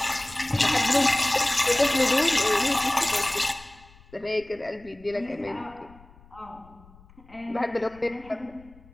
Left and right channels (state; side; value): noise; left; rumble, 25 dB below the sound